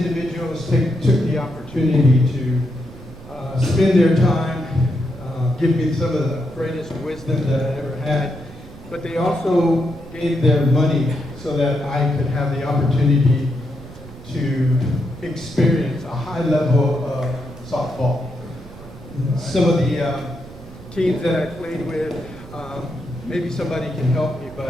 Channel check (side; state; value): right; noise; rumble, 17 dB below the sound